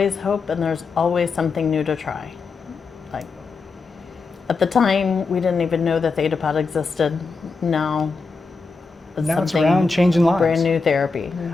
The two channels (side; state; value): right; quieter; 4.3 dB